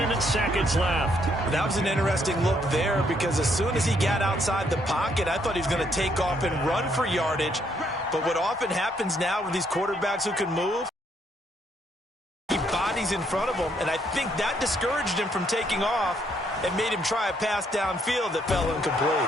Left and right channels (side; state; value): both; normal; correlation 0.71